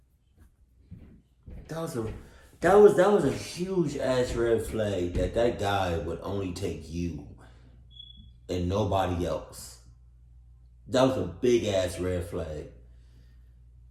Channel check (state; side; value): identical; both; correlation 1.00